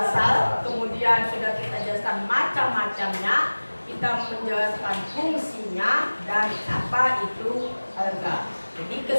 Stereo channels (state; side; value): inverted; both; correlation -1.00